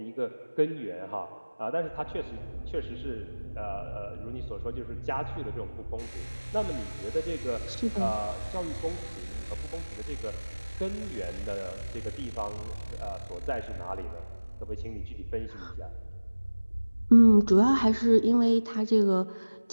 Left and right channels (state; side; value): inverted; both; correlation -1.00